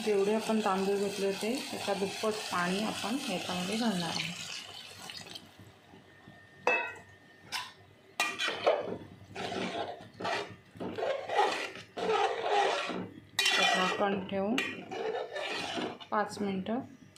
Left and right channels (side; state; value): both; identical; correlation 1.00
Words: जेवढे आपण तांदूळ घेतले होते त्याच्या दुप्पट पाणी आपण याच्यामध्ये घालणार आहोत। झाकण ठेवून 5 मिनिटं